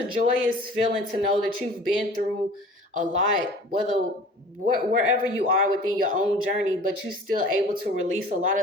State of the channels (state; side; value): normal; both; correlation 0.45